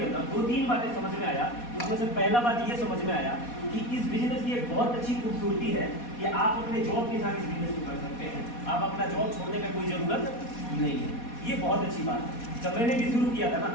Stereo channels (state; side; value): late; right; 4.2 ms